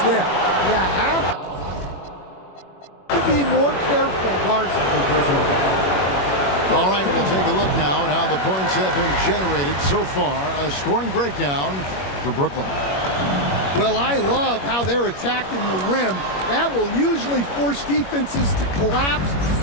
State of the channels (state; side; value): late; right; 21 ms